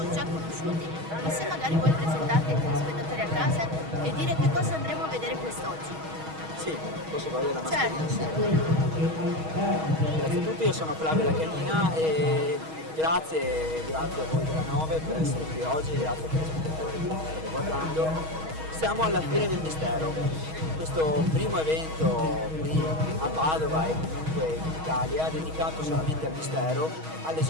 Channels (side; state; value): left; late; 6.3 ms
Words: già conosciuti, ma se magari vuoi presentarti ai telespettatori a casa e dire che cosa andremo a vedere quest'oggi. Sì, posso togliere la mascherina? Certo. Grazie a tutti, io sono Flavio La Canina e grazie a voi della 9 per essere qui oggi, grazie ai telespettatori che ci state guardando. Siamo alla Fiera del Mistero, questo primo evento qui a Padova e comunque in Italia dedicato solamente al mistero,